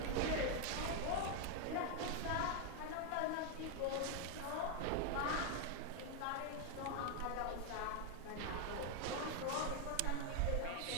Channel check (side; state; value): both; different; correlation 0.01